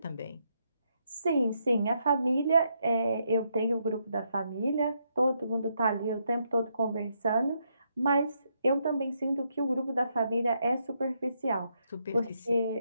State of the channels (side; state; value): both; inverted; correlation -0.78